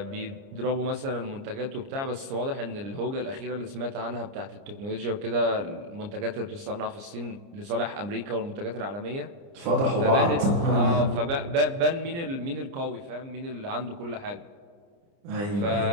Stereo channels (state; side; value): late; left; 30 ms